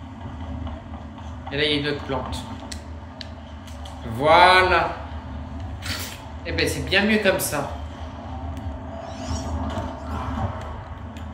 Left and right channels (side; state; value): both; identical; correlation 1.00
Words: Et là, il y a une autre plante. Voilà. Eh ben, c'est bien mieux comme ça.